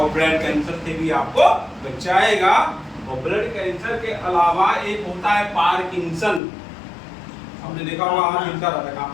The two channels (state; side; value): drops out; right; at 6.4 s